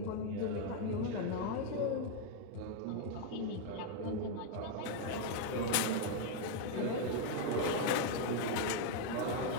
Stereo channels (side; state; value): both; different; correlation 0.01